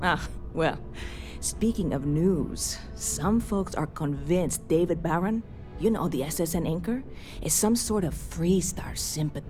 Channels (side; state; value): both; identical; correlation 1.00